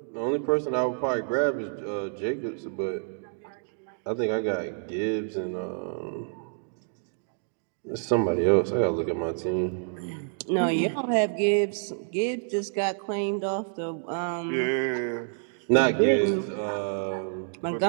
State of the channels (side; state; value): left; silent; digital silence